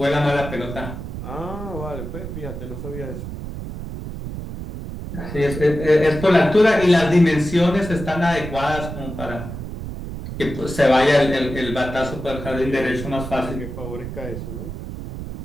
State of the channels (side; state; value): right; noise; rumble, 8 dB below the sound